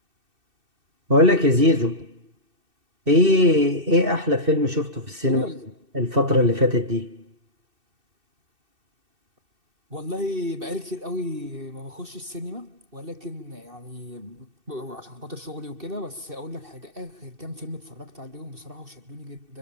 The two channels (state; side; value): late; left; 2.6 ms